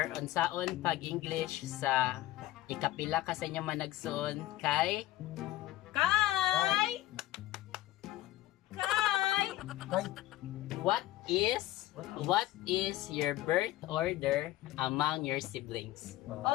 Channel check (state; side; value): quieter; right; 16.2 dB